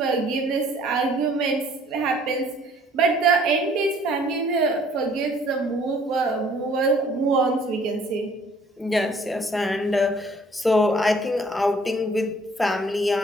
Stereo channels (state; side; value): normal; both; correlation 0.57